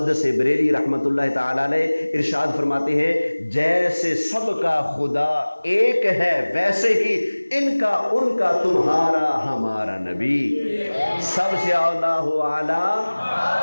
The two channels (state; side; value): inverted; both; correlation -1.00